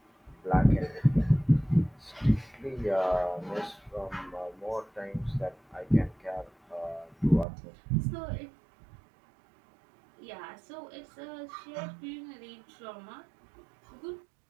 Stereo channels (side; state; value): left; drops out; at 7.5 s